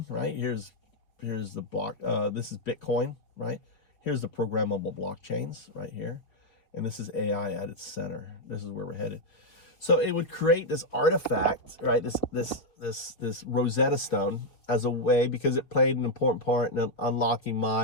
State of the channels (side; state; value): right; late; 4.8 ms